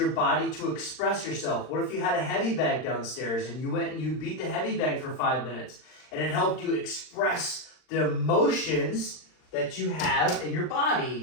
body to express yourself? What if you had a heavy bag downstairs and you went and you beat the heavy bag for 5 minutes and it helped you express the emotions that you have in your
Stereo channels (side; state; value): right; late; 39 ms